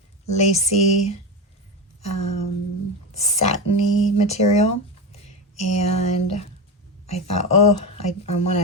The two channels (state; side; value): normal; both; correlation 0.17